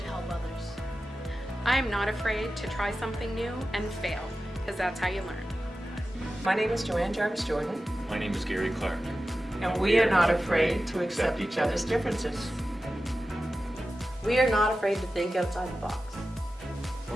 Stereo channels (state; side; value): normal; both; correlation 0.94